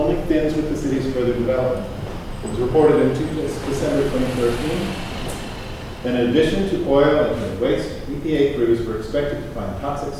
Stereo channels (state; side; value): identical; both; correlation 1.00